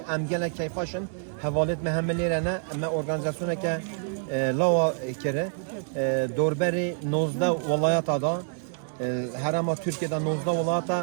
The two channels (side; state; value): left; silent; 60 dB below the other